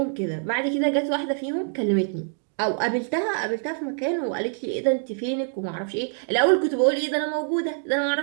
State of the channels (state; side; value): silent; left; 62 dB below the other